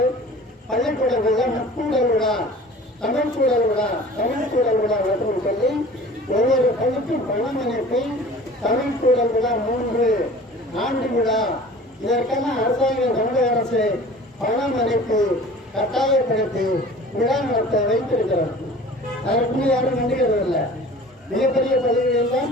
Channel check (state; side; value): normal; both; correlation 0.44